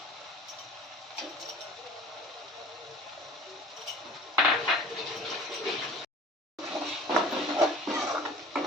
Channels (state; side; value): normal; both; correlation 0.45